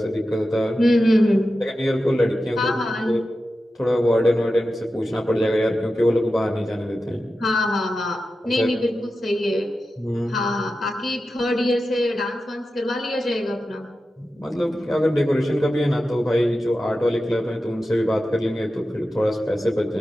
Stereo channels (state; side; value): normal; both; correlation 0.92